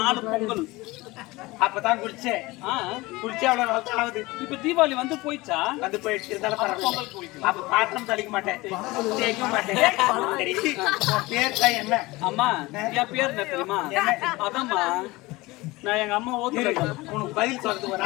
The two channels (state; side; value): quieter; right; 21.3 dB